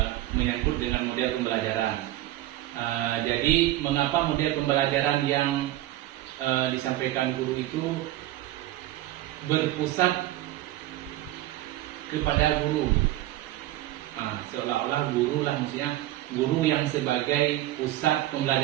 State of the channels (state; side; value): quieter; left; 15.4 dB